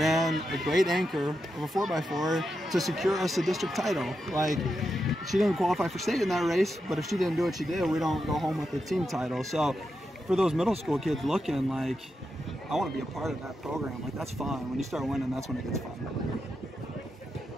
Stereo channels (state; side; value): normal; both; correlation 0.87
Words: a great anchor of a 4x4 to secure us a district title. Like, she didn't qualify for state in that race, but if she didn't do what she did, we don't go home with the team title. So for those middle school kids looking, like, I want to be a part of that program. Like, that's fun. When you start winning, that's when it gets fun.